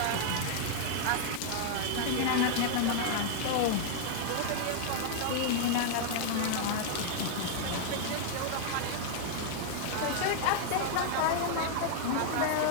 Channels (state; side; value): different; both; correlation -0.01